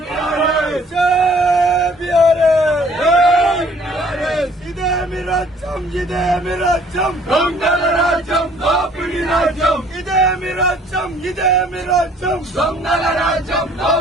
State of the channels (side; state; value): both; normal; correlation 0.58